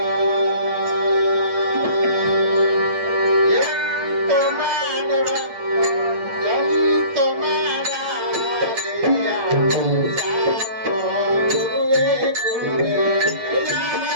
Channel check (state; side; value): late; left; 8.6 ms